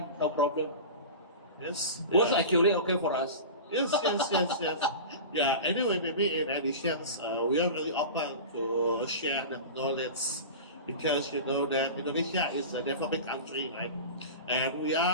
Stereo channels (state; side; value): inverted; both; correlation -0.31